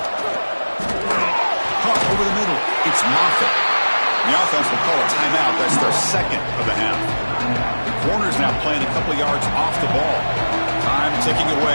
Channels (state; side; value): inverted; both; correlation -1.00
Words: Caught over the middle. It's Moffitt. The offense will call a timeout. That's their second of the half. The corner's now playing a couple yards off the ball. Time ticking